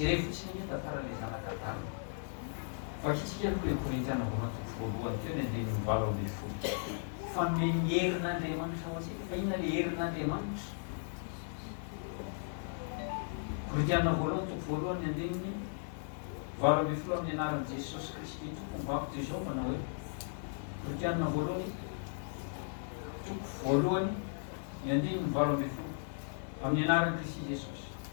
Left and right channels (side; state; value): right; silent; 54 dB below the other